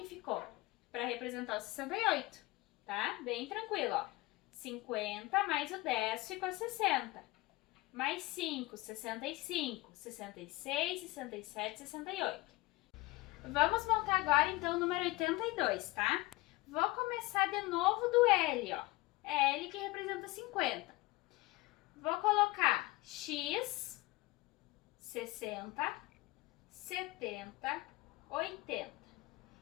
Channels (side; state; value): right; quieter; 20.7 dB